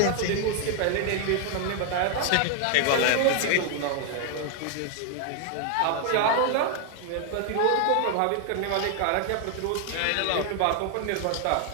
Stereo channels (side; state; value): both; different; correlation 0.00